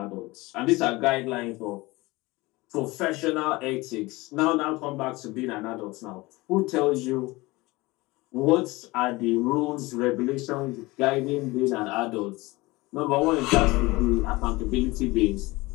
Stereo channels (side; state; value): right; quieter; 21.7 dB